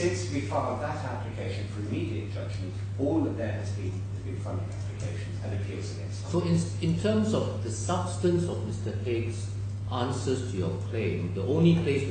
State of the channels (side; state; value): both; identical; correlation 1.00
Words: we filed that application for immediate judgment, all that there has been funding applications and appeals against So in terms of the substance of Mr. Haig's answers to your claim, the only place